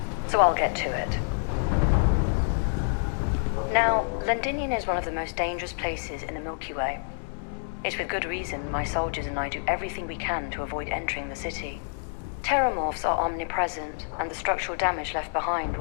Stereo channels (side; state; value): right; silent; digital silence